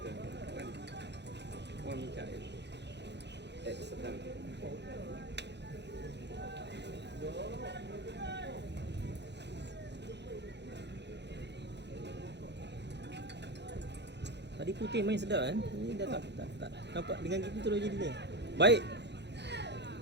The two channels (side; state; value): left; late; 0.50 ms